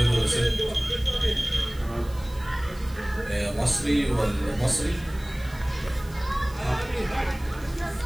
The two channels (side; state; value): right; noise; hiss, 22 dB below the sound